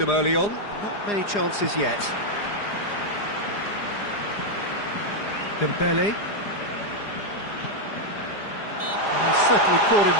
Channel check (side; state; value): right; late; 4.9 ms